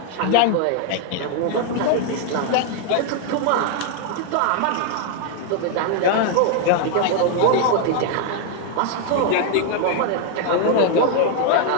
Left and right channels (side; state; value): both; different; correlation 0.00